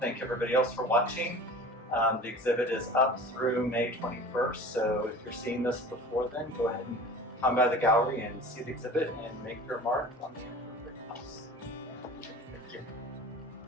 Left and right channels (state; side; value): normal; both; correlation 0.40